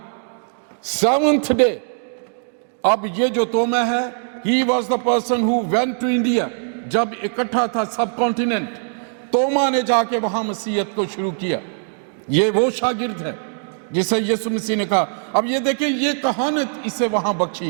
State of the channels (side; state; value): left; silent; digital silence